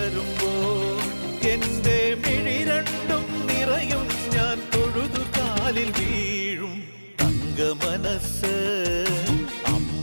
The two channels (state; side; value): inverted; both; correlation -1.00